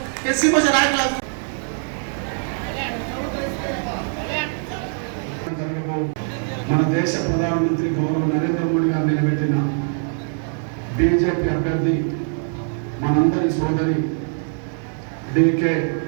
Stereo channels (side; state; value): left; silent; 55 dB below the other